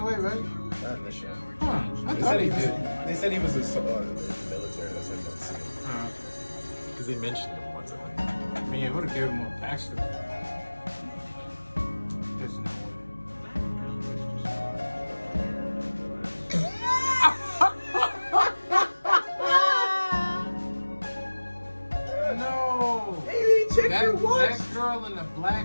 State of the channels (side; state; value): both; inverted; correlation -1.00